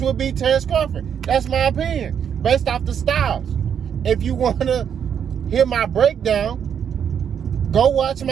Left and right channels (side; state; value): left; quieter; 8.1 dB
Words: beat Terrence Crawford. That's my opinion, based off the styles. If you want to hear my breakdown, go watch